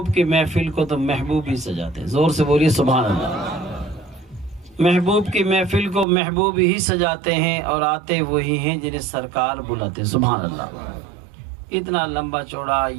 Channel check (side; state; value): left; drops out; at 6.1 s